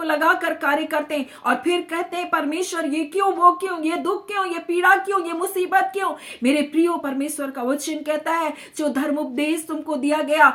लगाकर कार्य करते हैं और फिर कहते हैं परमेश्वर ये क्यों, वो क्यों, ये दुख क्यों, ये पीड़ा क्यों, ये मुसीबत क्यों। मेरे प्रियो, परमेश्वर का वचन कहता है जो धर्म उपदेश तुमको दिया गया,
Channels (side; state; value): both; identical; correlation 1.00